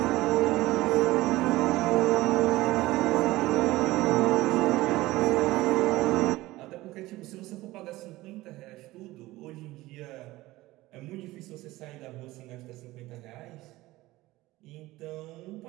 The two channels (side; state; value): left; quieter; 18.3 dB